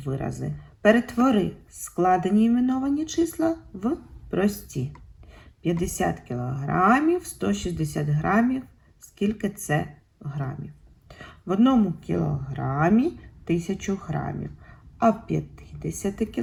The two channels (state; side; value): identical; both; correlation 1.00